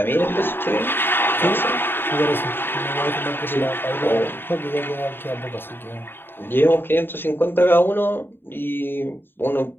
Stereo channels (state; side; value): late; right; 0.10 ms